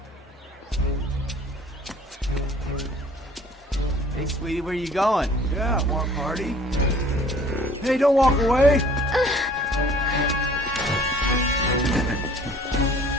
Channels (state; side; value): normal; both; correlation 0.52